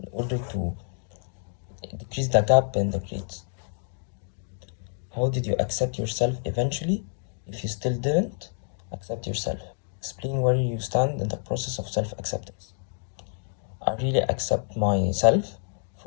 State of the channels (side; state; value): right; silent; digital silence